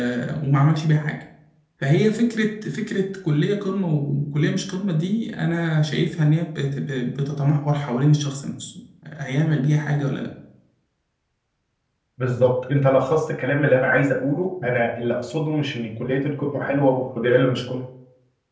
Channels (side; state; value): both; identical; correlation 1.00